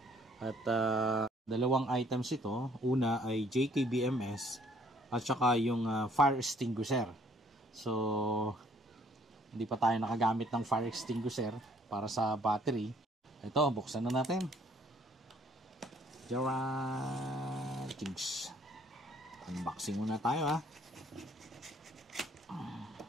At dalawang items ito. Una ay JKBMS at saka yung fire extinguisher. So hindi pa tayo nakagamit ng fire extinguisher para sa battery. Ito, buksan na natin. Jinx. Unboxing muna tayo ha.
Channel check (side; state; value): both; normal; correlation 0.61